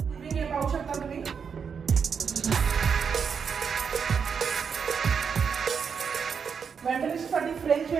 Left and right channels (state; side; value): quieter; left; 6.4 dB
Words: एरिया पाहू शकता तुम्ही. वेंटिलेशनसाठी फ्रेंच